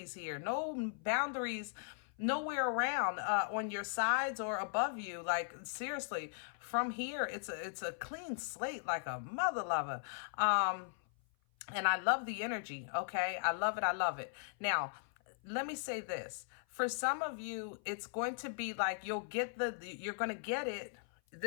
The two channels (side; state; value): right; silent; 52 dB below the other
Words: here. No boundaries nowhere around on your sides or above you. Like, seriously, from here, it's a clean slate, like a mother lover. And I love the energy. Okay. I love it. I love it. Now, let me say this. For some of you, it's going to be like, you'll get you're going to get it,